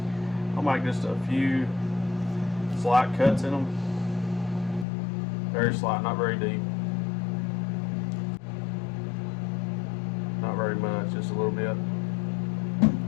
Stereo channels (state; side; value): drops out; right; at 4.9 s